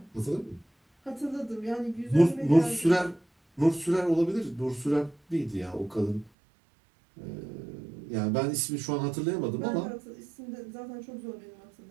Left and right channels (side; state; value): left; drops out; at 6.3 s